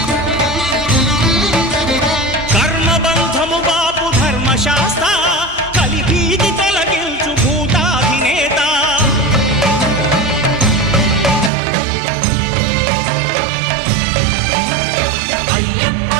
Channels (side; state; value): left; drops out; at 11.5 s